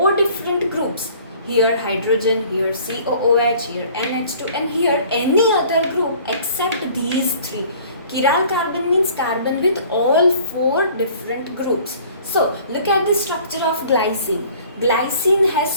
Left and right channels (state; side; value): inverted; both; correlation -0.52